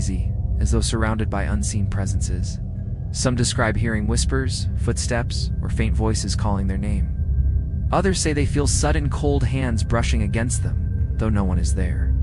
as though surrounded by unseen presences. Some describe hearing whispers, footsteps, or faint voices calling their name. Others say they feel sudden cold hands brushing against them, though no one is there.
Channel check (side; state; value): both; identical; correlation 1.00